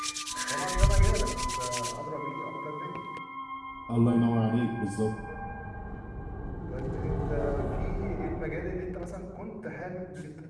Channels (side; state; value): both; identical; correlation 1.00